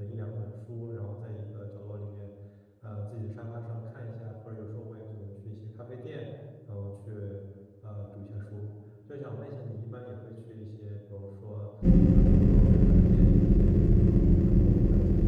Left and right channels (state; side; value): identical; both; correlation 1.00